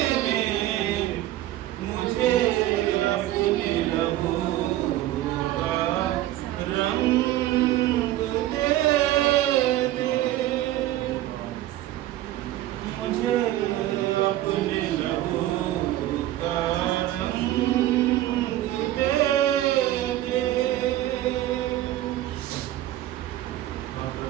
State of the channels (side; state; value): left; quieter; 14.4 dB